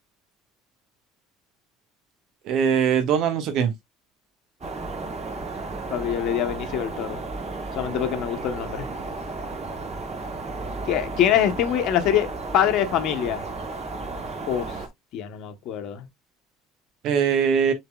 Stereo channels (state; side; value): normal; both; correlation 0.33